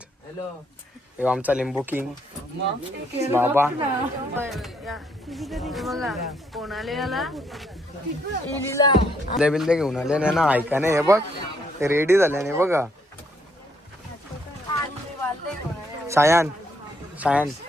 आमचा लिंबू किंग बाबा बिल्ले घेऊन आले ना ऐका नाही. हे बघ ते रेडी झाल्याने बघा. सायन सायन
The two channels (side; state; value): both; normal; correlation 0.71